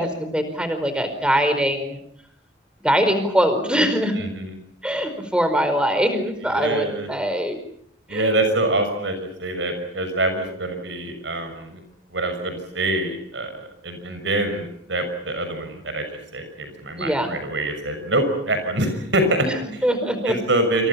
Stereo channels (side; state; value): both; normal; correlation 0.37